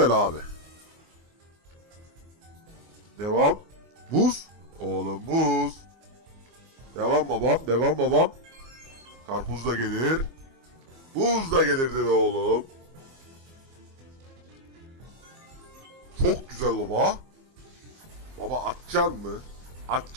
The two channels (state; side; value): late; left; 24 ms